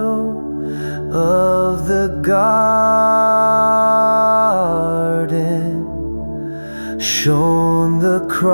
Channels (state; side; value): inverted; both; correlation -1.00